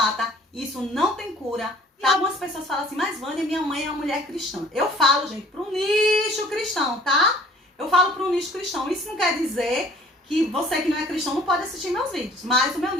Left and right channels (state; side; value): normal; both; correlation 0.52